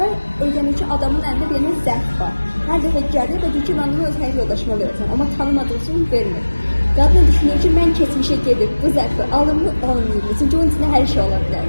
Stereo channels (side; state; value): both; inverted; correlation -1.00